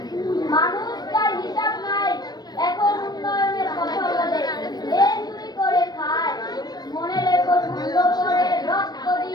মানুষ তার হিসাব নাই এখন উন্নয়নের কথা বলে এই চুরি করে খায় মনে রেখো যুদ্ধ করে রক্ত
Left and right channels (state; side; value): late; right; 0.19 ms